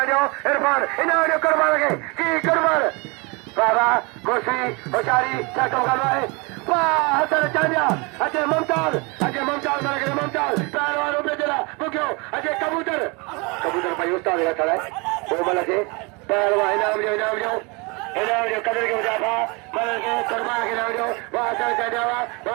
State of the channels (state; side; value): quieter; left; 28.9 dB